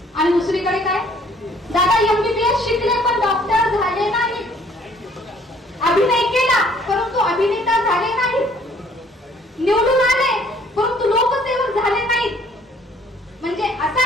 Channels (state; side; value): normal; both; correlation 0.59